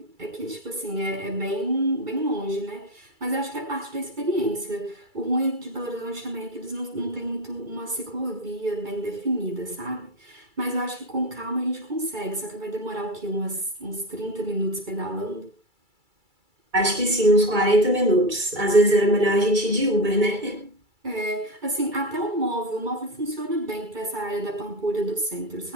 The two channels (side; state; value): left; late; 2.3 ms